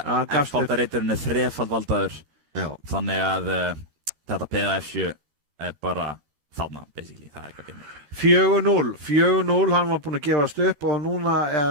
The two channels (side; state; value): left; late; 13 ms